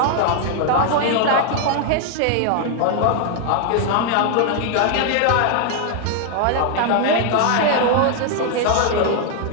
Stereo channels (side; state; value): both; different; correlation 0.00